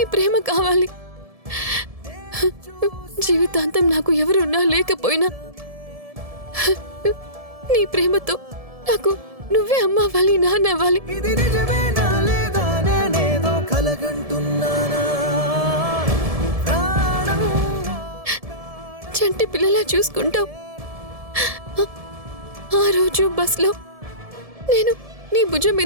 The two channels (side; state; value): left; late; 1.7 ms